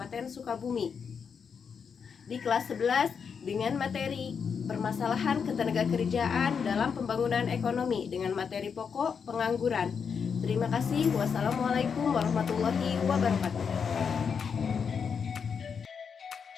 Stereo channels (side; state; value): right; quieter; 6.4 dB